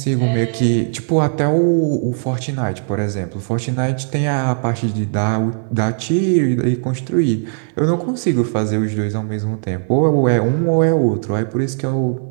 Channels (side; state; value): left; silent; 61 dB below the other